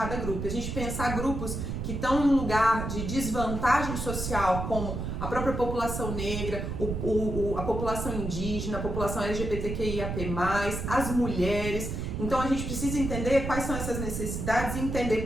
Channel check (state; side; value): noise; right; rumble, 4 dB below the sound